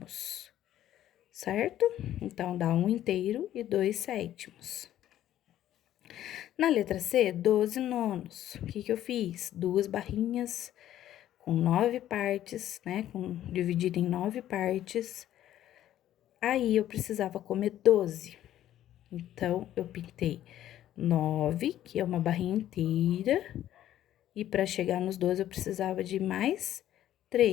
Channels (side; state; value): right; quieter; 12.3 dB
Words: certo? Então, dá 1 inteiro e 2 sétimos. Na letra C, 12 nonos. O que eu fiz? 2 barrinhas com 9 partes, né? Dividido em 9 partes. Aí, eu precisava comer 12. Então, eu pintei 9, que é uma barrinha inteira, E para chegar nos 12, eu precisava de mais